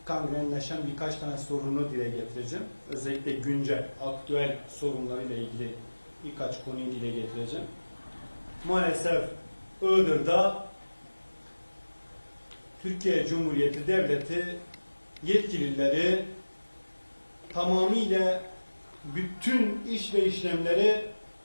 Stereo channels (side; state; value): both; inverted; correlation -1.00